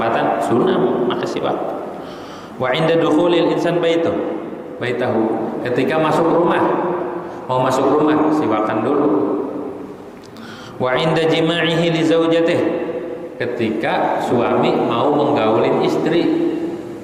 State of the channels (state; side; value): identical; both; correlation 1.00